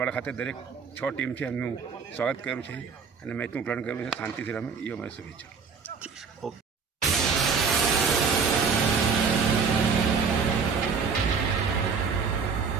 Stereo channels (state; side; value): quieter; left; 5.5 dB